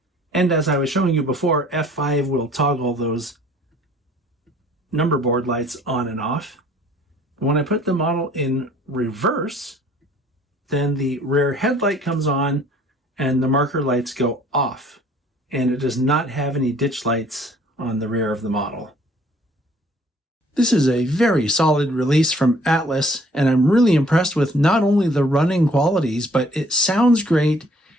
And as I was showing you before, F5 will toggle those number board lights on and off. When I put the model in reverse, then the rear headlight comes on and the marker lights go off. And it does not have any ditch lights on the rear of the model. This is a very solid release from Atlas, and I'm really impressed with not only the running qualities, but it sounds great,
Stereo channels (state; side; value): normal; both; correlation 0.57